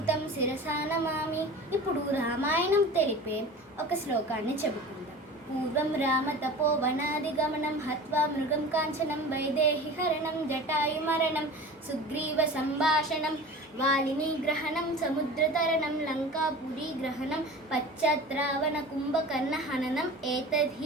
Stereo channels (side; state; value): both; normal; correlation 0.36